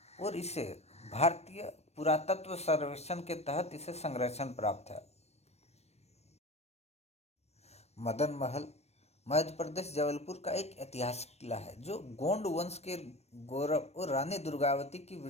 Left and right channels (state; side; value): late; right; 0.31 ms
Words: और इसे भारतीय पुरातत्व सर्वेक्षण के तहत इसे संरक्षण प्राप्त है। मदन महल मध्य प्रदेश जबलपुर का एक ऐतिहासिक किला है जो गोंड वंश के गौरव और रानी दुर्गावती की